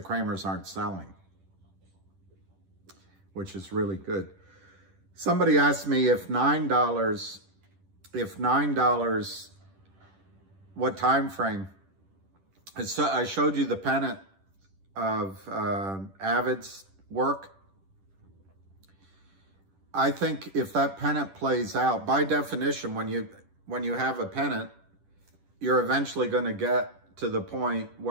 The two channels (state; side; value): late; left; 10 ms